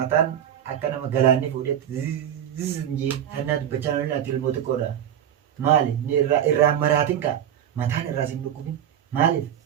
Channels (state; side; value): quieter; left; 10.1 dB